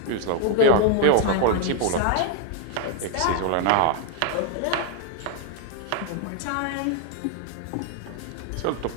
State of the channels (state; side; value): different; both; correlation 0.00